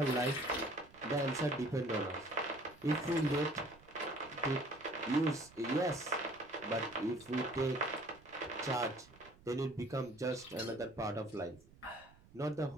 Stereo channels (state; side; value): noise; right; rumble, 25 dB below the sound